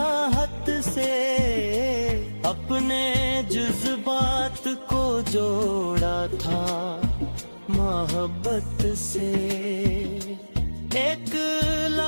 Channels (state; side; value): inverted; both; correlation -1.00